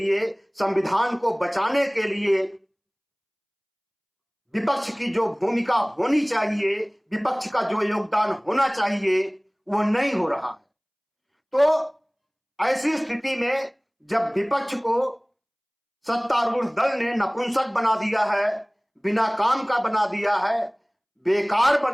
संविधान को बचाने के लिए विपक्ष की जो भूमिका होनी चाहिए, विपक्ष का जो योगदान होना चाहिए वो नहीं हो रहा है। तो ऐसी स्थिति में जब विपक्ष को सत्तारूढ़ दल ने नपुंसक बना दिया है, बिना काम का बना दिया है, बेकार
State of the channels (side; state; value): both; identical; correlation 1.00